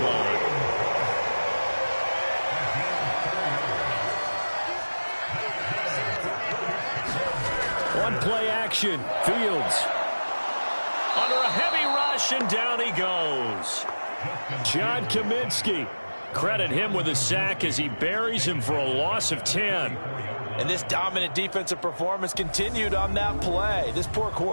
line. One play action. Fields under a heavy rush, and down he goes. John Kaminsky. Credit him with a sack as he buries him for a loss of 10. And this dominant defensive performance continued on that play. This poor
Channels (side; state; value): both; inverted; correlation -1.00